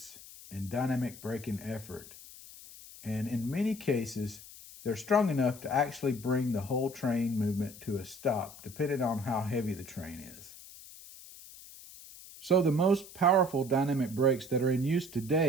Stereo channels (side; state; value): left; noise; hiss, 17 dB below the sound